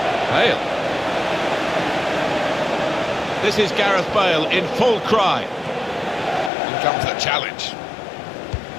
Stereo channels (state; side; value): drops out; right; at 6.5 s